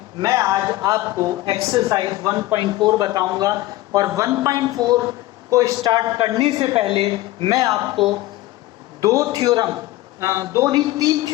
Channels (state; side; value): quieter; right; 17.2 dB